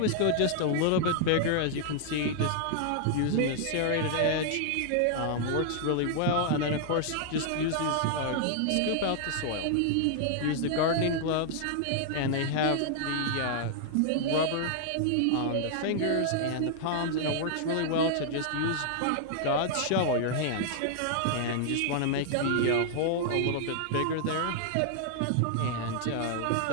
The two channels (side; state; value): both; different; correlation -0.01